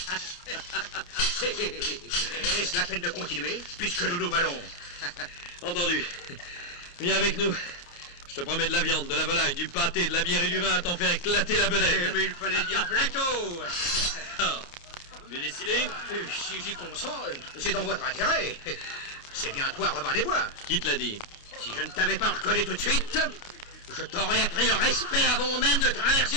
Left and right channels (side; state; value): right; late; 28 ms